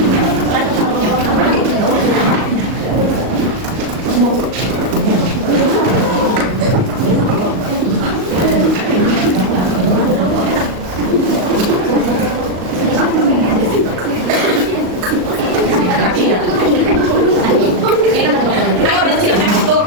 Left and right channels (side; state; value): left; late; 38 ms